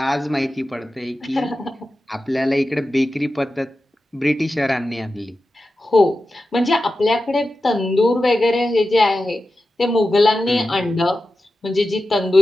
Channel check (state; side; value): normal; both; correlation 0.93